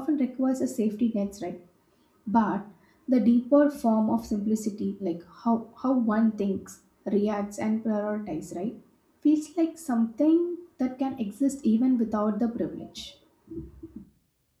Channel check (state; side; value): identical; both; correlation 1.00